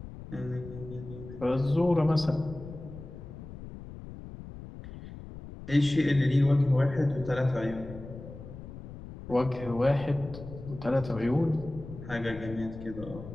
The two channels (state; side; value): noise; left; rumble, 13 dB below the sound